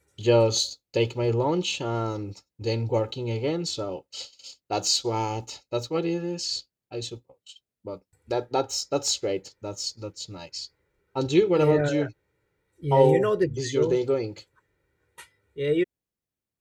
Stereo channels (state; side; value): identical; both; correlation 1.00